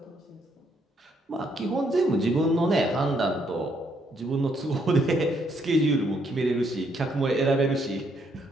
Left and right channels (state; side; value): normal; both; correlation 0.72